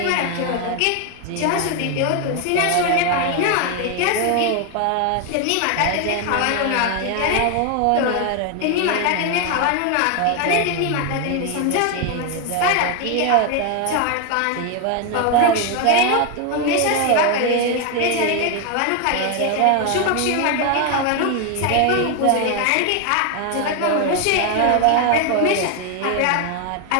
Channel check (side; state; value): both; different; correlation 0.01